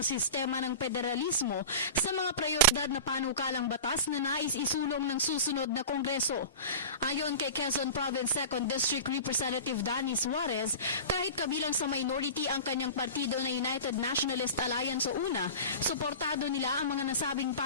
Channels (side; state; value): both; inverted; correlation -0.33